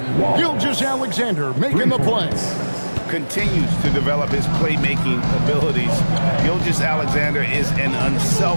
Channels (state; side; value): inverted; both; correlation -1.00